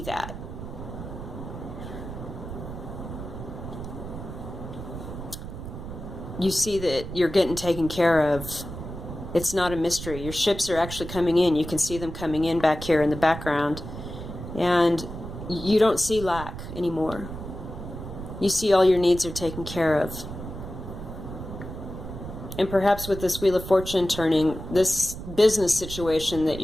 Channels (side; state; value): right; noise; rumble, 9 dB below the sound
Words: that. You see that you're getting taken care of. It's not a mystery. Your ships are actually coming in. You can see them coming in back here in the background. And you don't see lack anymore. You see all your needs are taken care of. And perhaps with this Wheel of Fortune turning, this business situation that